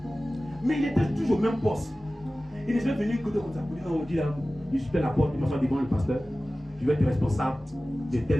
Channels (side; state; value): both; normal; correlation 0.97